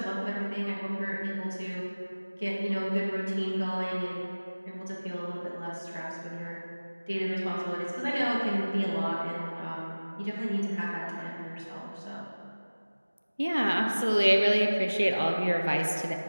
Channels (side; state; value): both; inverted; correlation -1.00